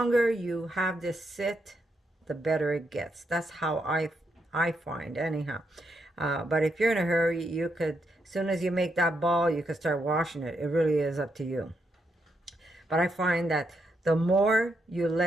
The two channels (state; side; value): normal; both; correlation 0.80